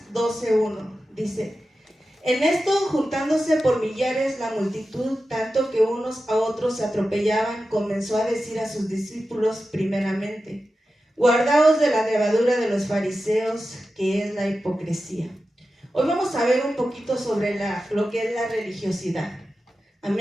12:1 dice: en esto, juntándose por millares la multitud, tanto que unos a otros se atropellaban, comenzó a decir a sus discípulos primeramente: guardaos de la levadura de los fariseos, que es la hipocresía. Hoy vamos a ver un poquito sobre lo que es la religiosidad.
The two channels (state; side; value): normal; both; correlation 0.92